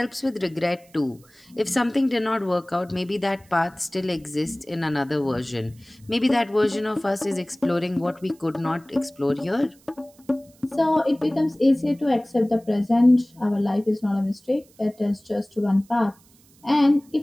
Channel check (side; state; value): right; noise; hiss, 29 dB below the sound